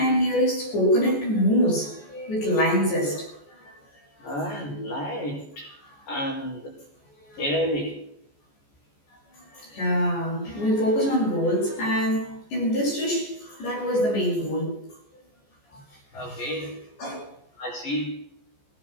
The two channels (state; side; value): late; right; 14 ms